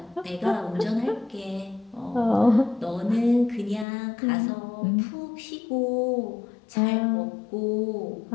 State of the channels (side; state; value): right; drops out; at 3.9 s